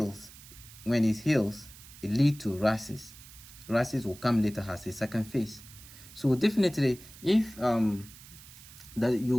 it leads to rashes. Rashes will come later as a second phase. So definitely, if that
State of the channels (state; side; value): noise; right; hiss, 19 dB below the sound